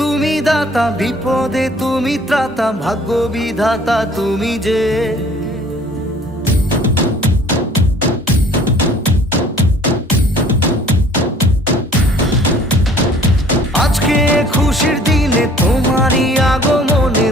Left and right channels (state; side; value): normal; both; correlation 0.53